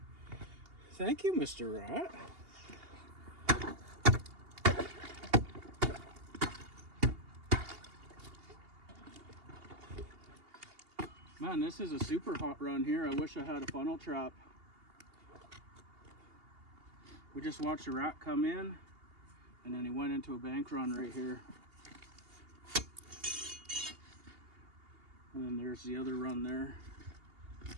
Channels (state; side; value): late; left; 2.8 ms